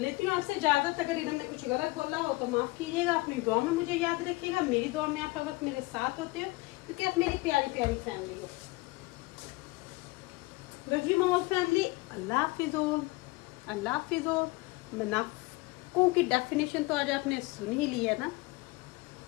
हूँ आपसे इजाजत। अगर इन्होंने कुछ गलत बोला हो तो माफ कीजिएगा, अपनी दुआ में मुझे याद रखिएगा। मेरी दुआ में आप हर वक्त मेरे साथ होते हो, क्योंकि आप मेरी प्यारी प्यारी फैमिली हो। लव यू माय फैमिली, अल्लाह हाफिज़ ऑल, अल्लाह हाफिज़ ऑल। मुनाफिकों की डेफिनेशन तो आज आपने सुन ही ली है ना।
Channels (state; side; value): quieter; right; 23.2 dB